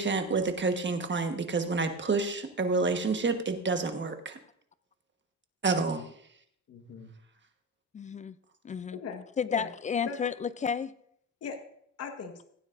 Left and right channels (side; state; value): both; normal; correlation 0.23